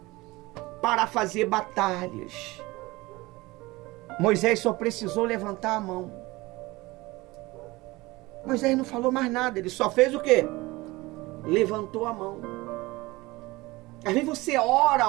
para fazer batalhas. Moisés só precisou levantar a mão. Moisés não falou mais nada, ele só fez o quê? Levantou a mão. Às vezes você ora.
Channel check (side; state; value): left; quieter; 21.2 dB